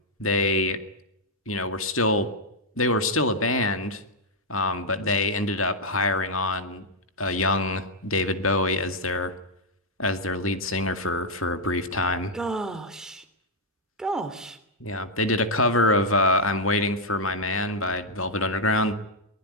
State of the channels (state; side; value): normal; both; correlation -0.02